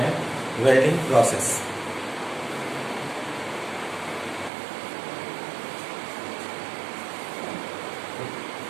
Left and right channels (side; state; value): left; drops out; at 4.5 s